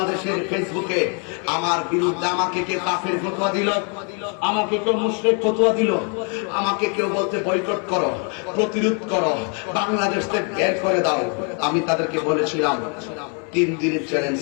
ফেসবুকে আমার বিরুদ্ধে আমাকে কে কাফের ফতোয়া দিল, আমাকে কেউ মুশরিক ফতোয়া দিল, আমাকে কেউ বলতে বয়কট করো, প্রতিরোধ করো, বাংলাদেশ থেকে বের করে দাও। আমি তাদেরকে বলেছিলাম, 3 দিনের চ্যালেঞ্জ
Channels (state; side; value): quieter; right; 38.2 dB